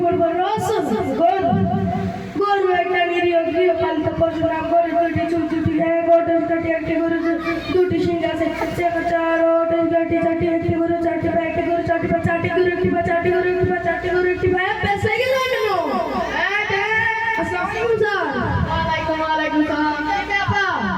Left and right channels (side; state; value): both; identical; correlation 1.00